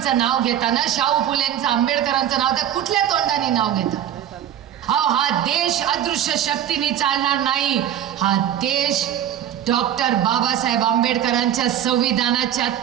नाव घेताना, शाहू फुलेंचं, आंबेडकरांचं नाव तर कुठल्या तोंडाने नाव घेता. हा देश अदृश्य शक्तीने चालणार नाही. हा देश डॉक्टर बाबासाहेब आंबेडकरांच्या संविधानाच्या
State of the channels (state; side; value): quieter; left; 10.6 dB